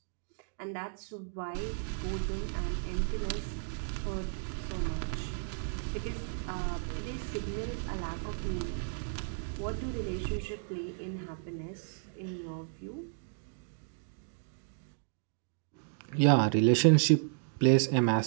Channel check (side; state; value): left; silent; digital silence